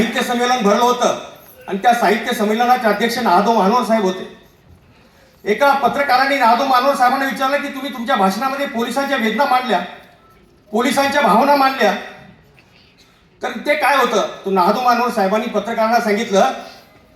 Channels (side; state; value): both; identical; correlation 1.00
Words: संमेलन भरलं होतं आणि त्या साहित्य संमेलनाचे अध्यक्ष नादो मानोर साहेब होते. एका पत्रकाराने नादो मानोर साहेबांना विचारलं की तुम्ही तुमच्या भाषणामध्ये पोलिसांच्या वेदना मांडल्या, पोलिसांच्या भावना मांडल्या, तर ते काय होतं? तो नादो मानोर साहेबांनी पत्रकारांना सांगितलं